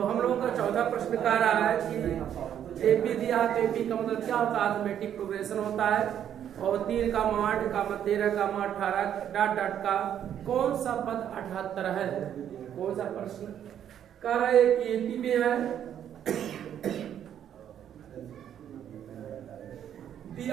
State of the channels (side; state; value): left; quieter; 9.8 dB